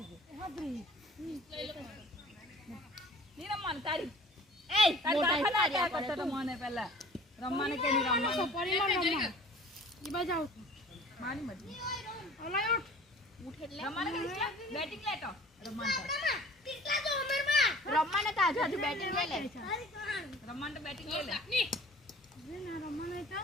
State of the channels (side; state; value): both; normal; correlation 0.46